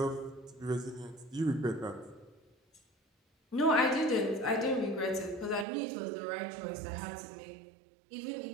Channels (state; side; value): drops out; left; at 5.7 s